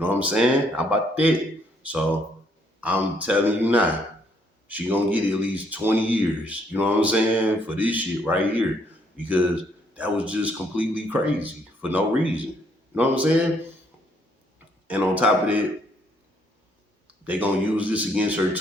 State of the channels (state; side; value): normal; both; correlation 0.69